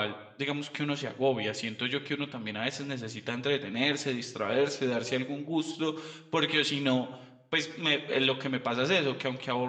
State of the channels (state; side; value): identical; both; correlation 1.00